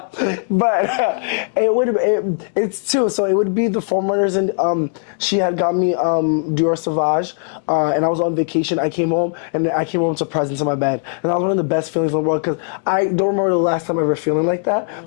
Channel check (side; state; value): right; silent; digital silence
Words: But it's 2. So it would be the foam runners, and she had got me Dior Sauvage, and I was on vacation. I came home, and I came home to presents in my bed, and that was one of the best feelings in the world because I don't remember the last time ever feeling like that.